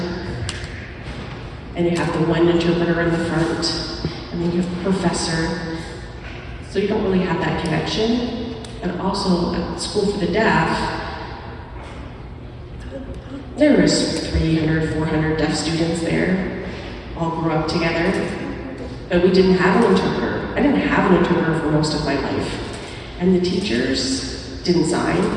and you have the one interpreter in the front, and then you have a professor. So you don't really have that connection. And also at School for the Deaf, there was 300, 400 deaf students there, all grew up together, but we didn't have an interpreter. I didn't have an interpreter for most of my life. And the teachers didn't sign.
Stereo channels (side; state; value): both; identical; correlation 1.00